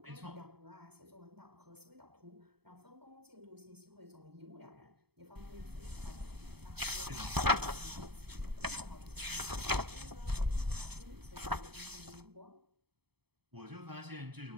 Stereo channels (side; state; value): left; late; 0.97 ms